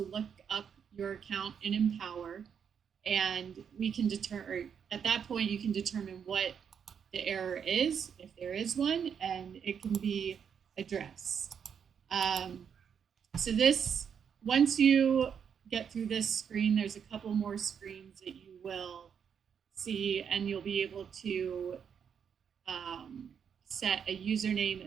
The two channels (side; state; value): left; quieter; 7.4 dB